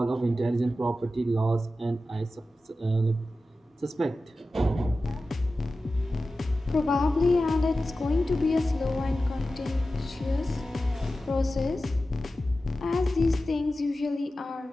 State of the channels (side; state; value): both; normal; correlation 0.94